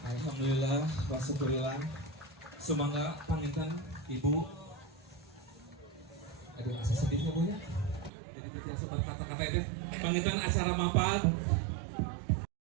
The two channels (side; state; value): left; drops out; at 8.1 s